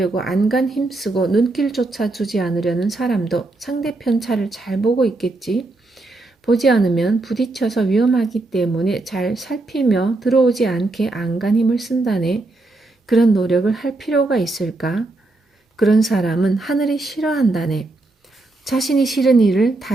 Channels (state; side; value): quieter; left; 3.0 dB